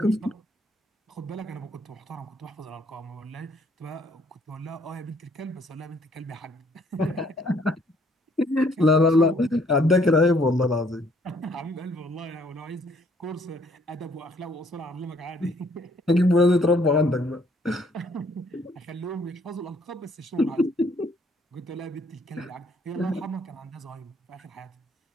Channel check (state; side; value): normal; both; correlation 0.64